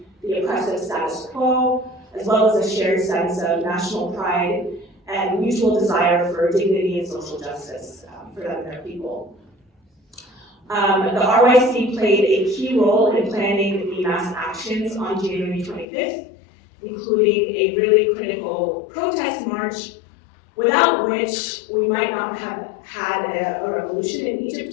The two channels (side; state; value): right; drops out; at 15.9 s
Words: the oppressive status quo, as well as a shared sense of national pride and mutual desire for dignity and social justice for them and their people. The RYC played a key role in planning the mass actions on January 25th, including a really critical protest march, without which we might not have had a revolution in